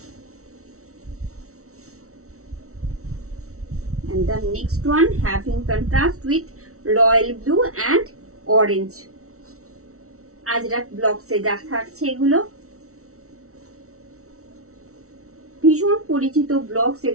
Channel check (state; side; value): late; left; 0.63 ms